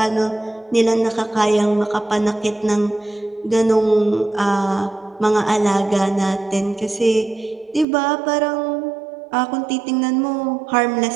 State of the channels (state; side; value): drops out; left; at 7.9 s